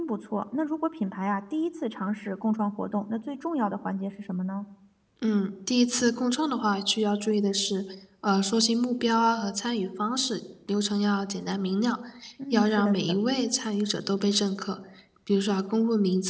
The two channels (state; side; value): identical; both; correlation 1.00